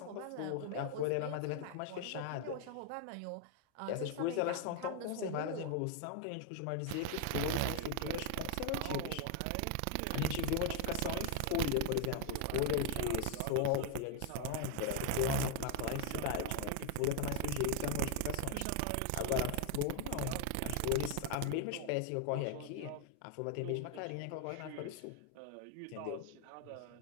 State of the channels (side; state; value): both; different; correlation 0.01